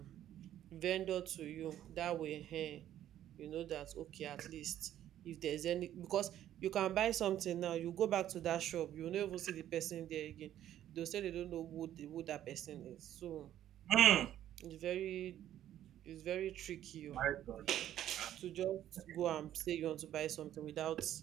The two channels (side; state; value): left; quieter; 11.8 dB